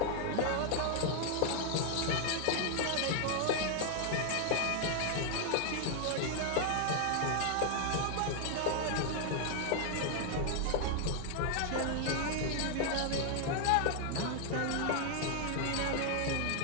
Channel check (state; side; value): different; both; correlation 0.00